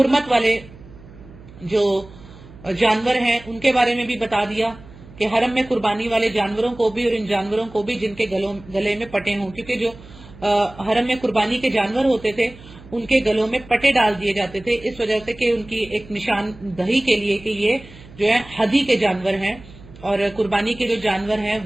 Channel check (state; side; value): noise; right; hum, 20 dB below the sound